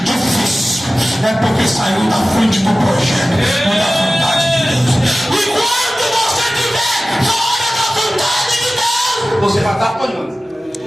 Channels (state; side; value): normal; both; correlation 0.96